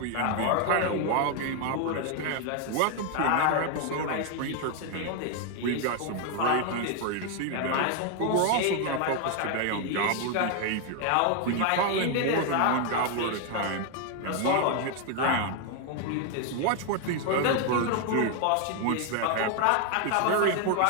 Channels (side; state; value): both; different; correlation 0.00